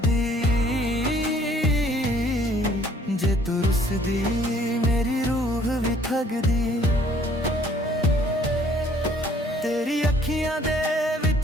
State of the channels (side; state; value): both; normal; correlation 0.59